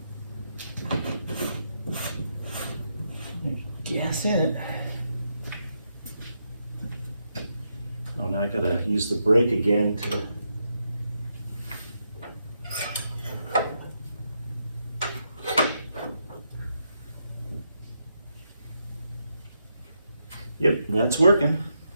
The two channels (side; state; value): both; inverted; correlation -0.81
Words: Gas in it. Oh, now I gotta use the brake again to. Yep, that's working.